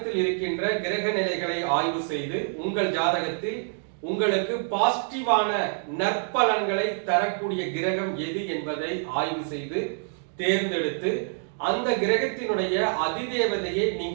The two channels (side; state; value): left; silent; digital silence